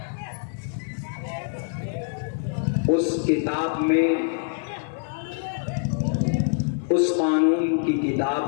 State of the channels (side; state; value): right; silent; 61 dB below the other